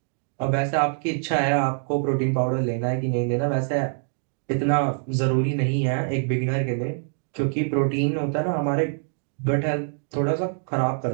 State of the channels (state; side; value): silent; left; 61 dB below the other